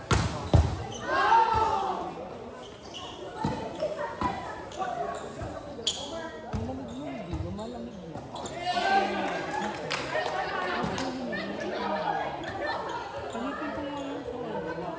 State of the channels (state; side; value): identical; both; correlation 1.00